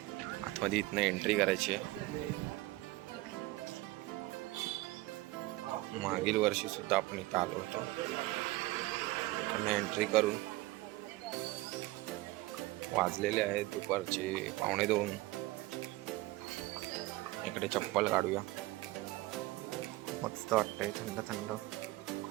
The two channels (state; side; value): quieter; left; 19.1 dB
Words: आतमध्ये इथनं एंट्री करायची आहे. मागील वर्षी सुद्धा आपण इथं आलो होतो. एंट्री करून वाजलेले आहेत दुपारचे 1:15. इकडे चप्पल काढूया. मस्त वाटतंय, थंड थंड.